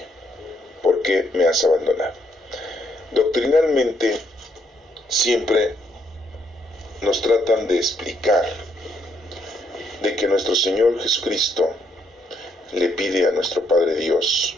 ¿por qué me has abandonado? Doctrinalmente, siempre nos tratan de explicar de que nuestro Señor Jesucristo le pide a nuestro Padre Dios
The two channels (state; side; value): normal; both; correlation 0.72